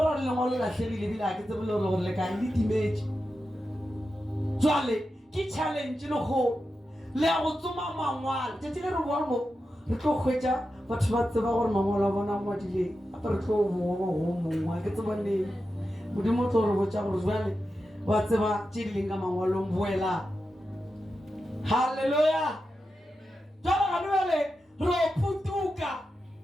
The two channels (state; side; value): normal; both; correlation 0.90